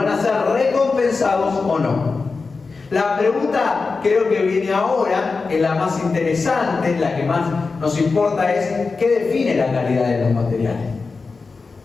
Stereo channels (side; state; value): right; quieter; 4.3 dB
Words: a ser recompensados o no. La pregunta, creo que viene ahora, es la más interesante, la que más nos importa, es ¿qué define la calidad de los materiales?